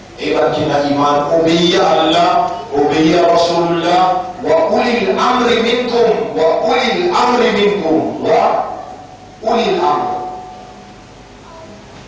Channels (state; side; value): identical; both; correlation 1.00